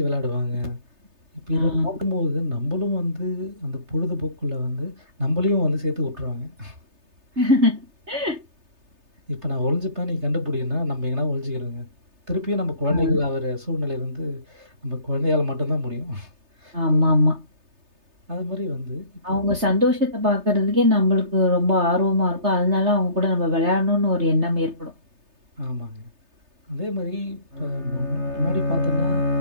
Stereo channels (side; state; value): left; late; 3.3 ms